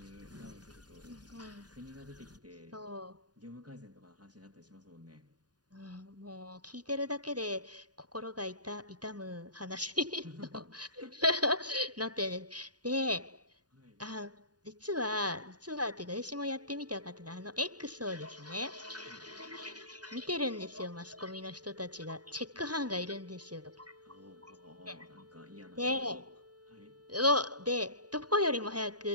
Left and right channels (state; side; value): late; left; 0.69 ms